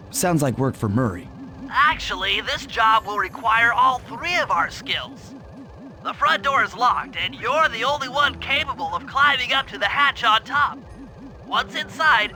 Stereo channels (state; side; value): identical; both; correlation 1.00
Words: Sounds like work for Murray. Actually, this job will require all three of our skills. The front door is locked, and you're the only one capable of climbing up to the hatch on top. Once inside,